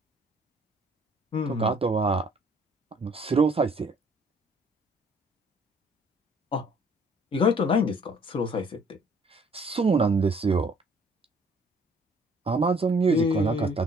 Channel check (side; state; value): both; normal; correlation 0.59